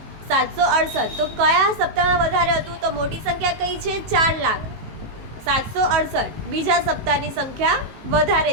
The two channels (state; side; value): late; left; 18 ms